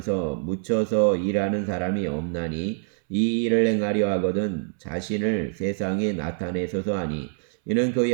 묻혀서 일하는 사람이 없나니 이 일을 행하려 하거든 자신을 세상에 나타내소서 하니 이는 그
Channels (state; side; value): silent; left; 62 dB below the other